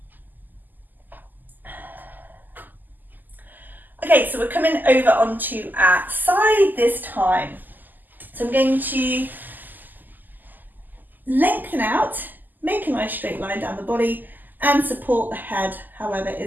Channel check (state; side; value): late; left; 0.086 ms